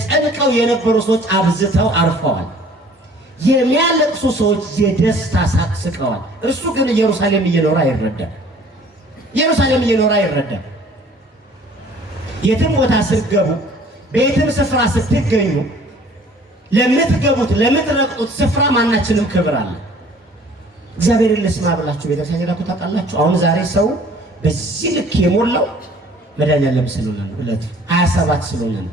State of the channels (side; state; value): both; normal; correlation 0.53